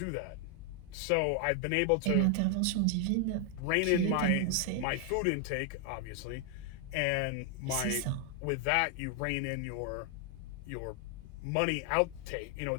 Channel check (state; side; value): different; both; correlation 0.00